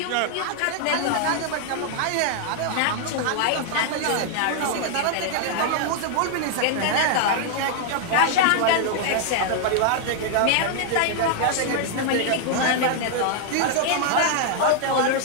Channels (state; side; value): different; both; correlation 0.00